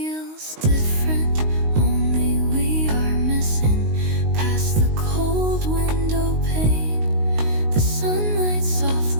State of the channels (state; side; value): late; left; 19 ms